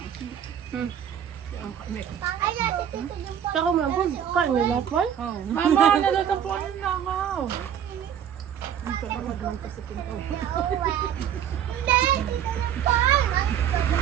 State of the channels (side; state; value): left; quieter; 9.3 dB